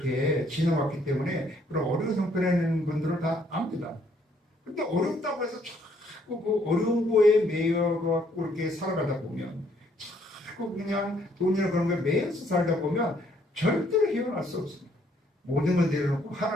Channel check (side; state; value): both; normal; correlation 0.67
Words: 지나왔기 때문에 그런 어려운 형편에 있는 분들은 다 압니다. 근데 어렵다고 해서 자꾸 그 어려운 거에 매여갖고 이렇게 살아가다 보면 자꾸 그냥 돈이나 그런 거에 매여서 살다 보면 절대로 헤어날 수 없습니다. 모든 걸 내려놓고